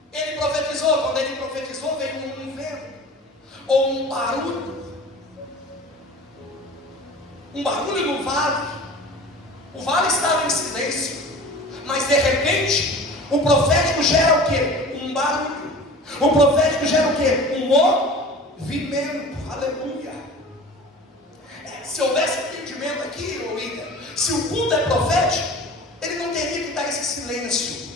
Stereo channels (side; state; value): both; normal; correlation 0.39